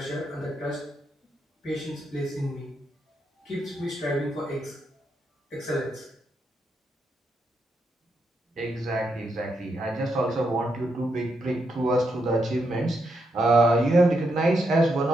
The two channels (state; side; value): normal; both; correlation 0.81